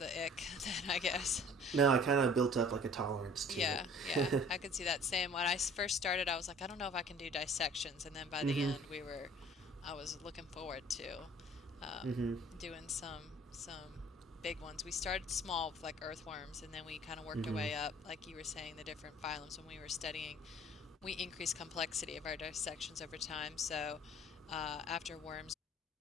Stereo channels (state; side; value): normal; both; correlation 0.50